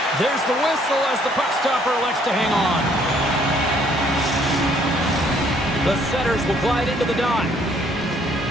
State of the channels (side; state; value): both; normal; correlation 0.64